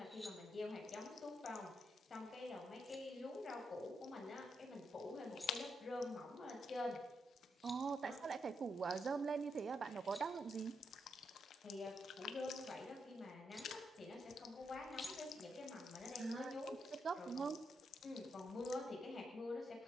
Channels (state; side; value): normal; both; correlation 0.82